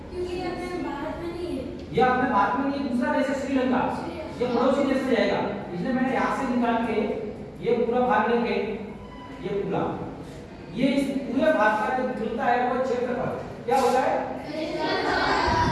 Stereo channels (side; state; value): both; identical; correlation 1.00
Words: क्योंकि अपने भारत में नहीं है। ये अपने भारत में नहीं, दूसरा देश है श्रीलंका, ये पड़ोसी देश में जाएगा, इसलिए मैंने यहाँ से निकाल के ये पूरा भाग लेके ये पूरा, ये इस पूरे भारत का जो निकलता है वो क्षेत्रफल क्या होता है?